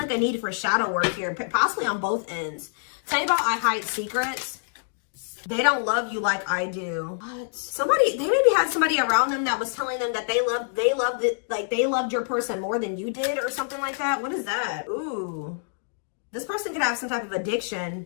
like a need for shadow work here, possibly on both ends. Tell you about I hide secrets. They don't love you like I do. What? They maybe had somebody around them that was telling them that they loved your person more than you did or something like that. What is that? Ooh. This person could have some type of addiction.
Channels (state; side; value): silent; right; digital silence